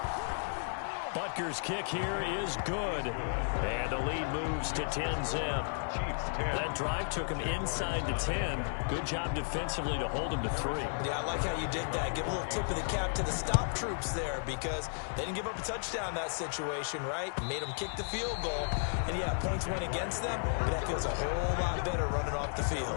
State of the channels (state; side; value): silent; right; 55 dB below the other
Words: Butker's kick here is good. And the lead moves to 10-zip. That drive took him inside the 10. Good job defensively to hold him to 3. Yeah, I like how you did that. Give a little tip of the cap to the stop troops there because they didn't give up a touchdown in that situation, right? Made them kick the field goal. And, yeah, points went against them, but that feels a whole lot better running off the